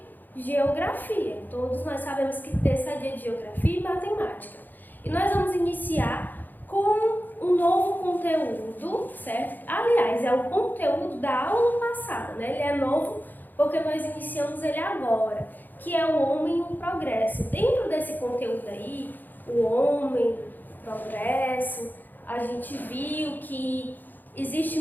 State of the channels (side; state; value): right; late; 0.087 ms